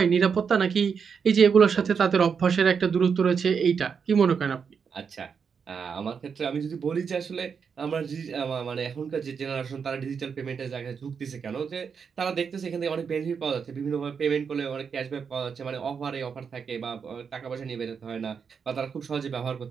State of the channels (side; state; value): left; quieter; 6.3 dB